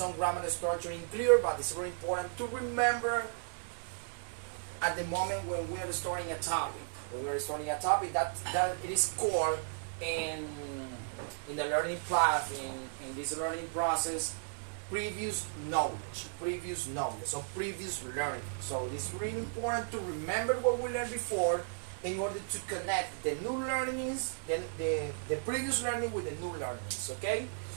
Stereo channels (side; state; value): left; silent; digital silence